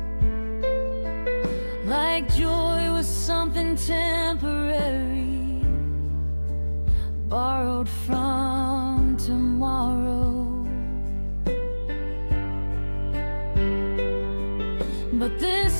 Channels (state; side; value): inverted; both; correlation -1.00